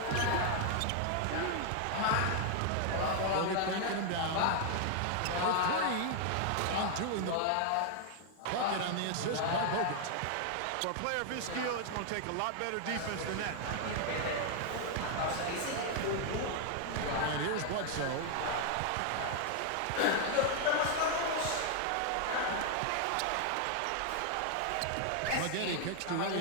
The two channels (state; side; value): different; both; correlation 0.00